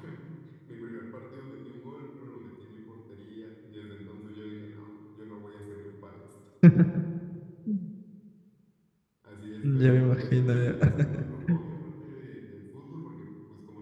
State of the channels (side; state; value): both; identical; correlation 1.00